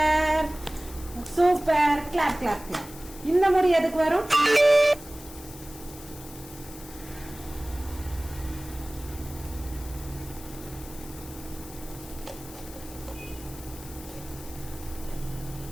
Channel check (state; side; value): noise; left; hiss, 17 dB below the sound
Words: super, clap clap clap. இந்த முறை எதுக்கு வரும்?